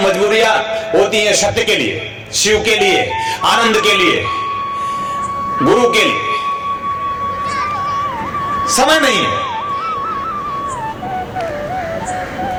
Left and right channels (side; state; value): both; identical; correlation 1.00